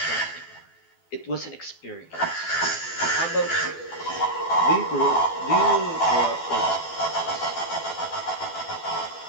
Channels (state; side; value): late; right; 12 ms